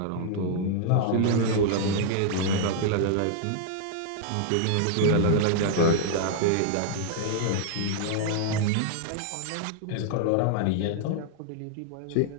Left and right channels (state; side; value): different; both; correlation 0.00